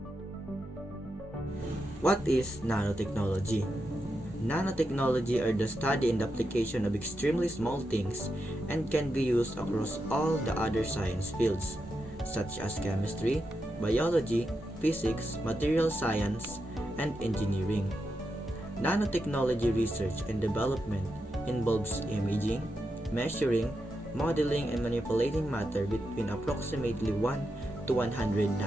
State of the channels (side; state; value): both; normal; correlation 0.86